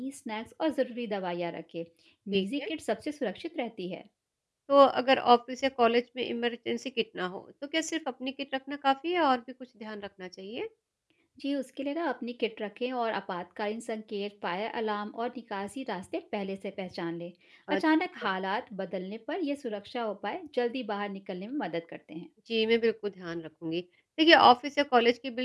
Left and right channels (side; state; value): both; identical; correlation 1.00